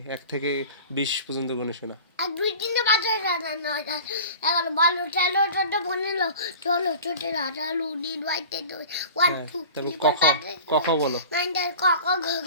1 থেকে 20 পর্যন্ত গুনে শোনা। এক দুই তিনটে বাজে না এগারো বারো তেরো চোদ্দ পনেরো ষোলো সতেরো আঠারো উনিশ বাইশ তেইশ one two three four five ক খ বলো। নাইন টেন ক খ গ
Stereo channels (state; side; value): inverted; both; correlation -0.39